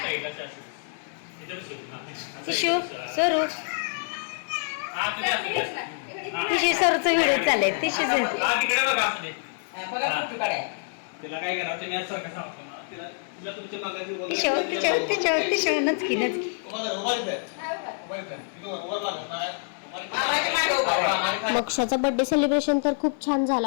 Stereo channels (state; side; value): silent; right; digital silence